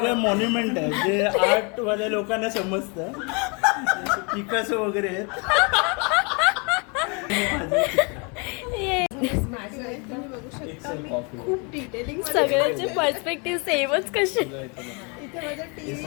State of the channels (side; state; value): right; quieter; 32.9 dB